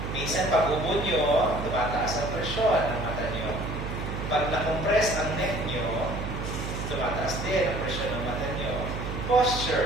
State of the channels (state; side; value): noise; right; hum, 5 dB below the sound